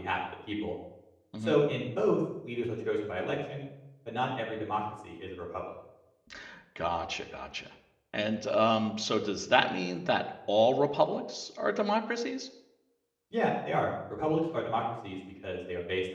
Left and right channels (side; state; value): both; identical; correlation 1.00